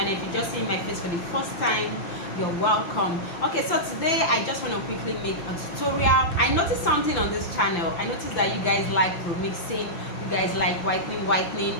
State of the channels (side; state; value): right; late; 5.9 ms